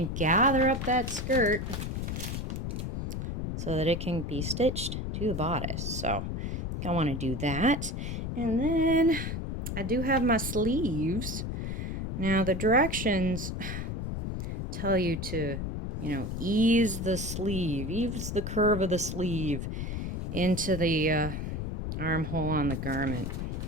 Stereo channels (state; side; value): noise; left; rumble, 3 dB below the sound